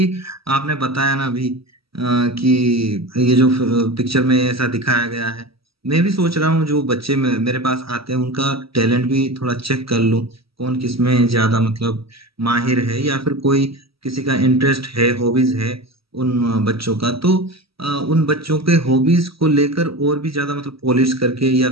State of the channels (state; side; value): late; left; 0.76 ms